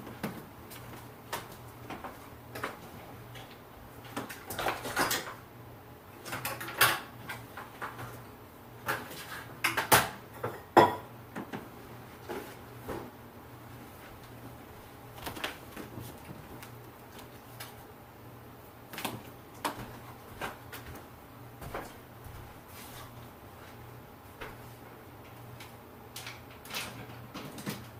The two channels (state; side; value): identical; both; correlation 1.00